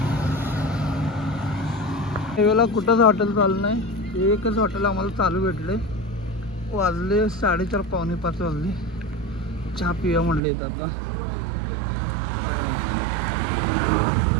वेळेला कुठंच हॉटेल चालू नाही. एकच हॉटेल आम्हाला चालू भेटले. वाजले 4:30 पावणे 5 वाजले. चहा पिया म्हणले आता.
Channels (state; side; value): drops out; left; at 10.4 s